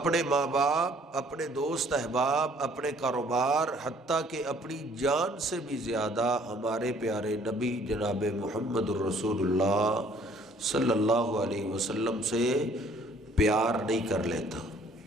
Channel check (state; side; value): normal; both; correlation 0.59